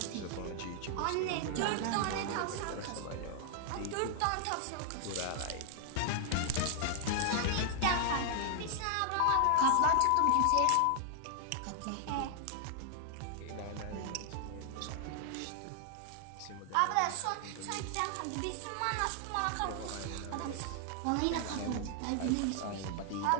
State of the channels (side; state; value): both; different; correlation 0.00